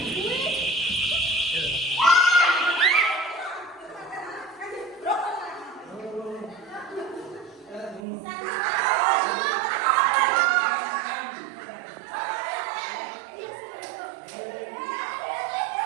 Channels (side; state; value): left; drops out; at 8.1 s